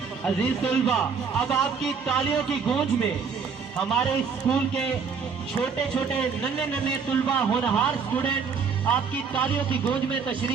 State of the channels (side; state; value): left; quieter; 5.9 dB